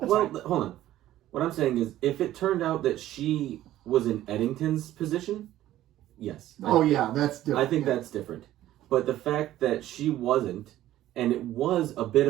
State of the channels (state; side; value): quieter; left; 13.8 dB